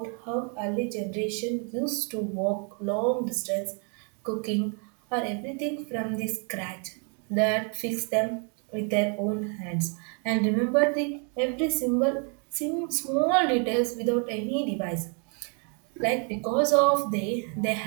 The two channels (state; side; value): quieter; left; 39.0 dB